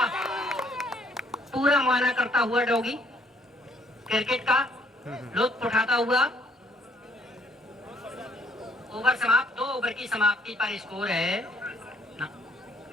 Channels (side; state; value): both; normal; correlation 0.64